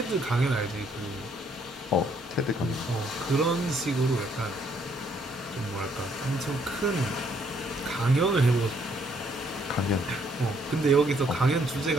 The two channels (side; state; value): both; normal; correlation 0.68